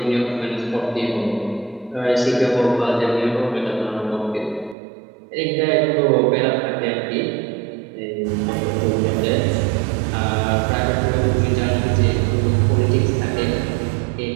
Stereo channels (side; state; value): left; drops out; at 4.8 s